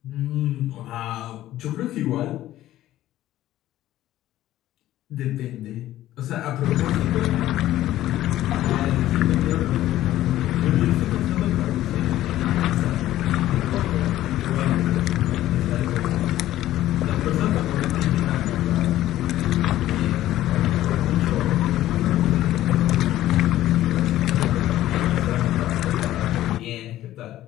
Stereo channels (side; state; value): right; quieter; 14.1 dB